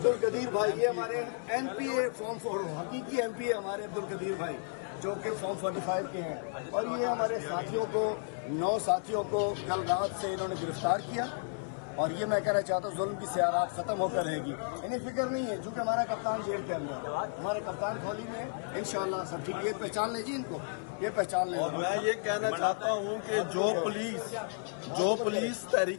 القدیر بھائی، یہ ہمارے این پی اے فارم 4 حقیقی این پی اے ہمارے عبد القدیر بھائی جو کہ فارم 45 کے ہیں. اور یہ ہمارے ساتھیوں کو 9 ساتھیوں کو کل رات سے انہوں نے گرفتار کیا. اور یہ میں کہنا چاہتا ہوں ظلم کی سیارات ختم ہو کر رہے گی. انہیں فکر نہیں ہے چونکہ ہمارا کپتان جیل کے اندر، ہمارے کپتان کھولی میں انشاءاللہ سب ٹھیک. یہ پہچان لیں جی ان کو، یہ پہچان لیں. اور میں یہ کہنا چاہتا ہوں کہ جو پولیس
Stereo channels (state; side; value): silent; right; 56 dB below the other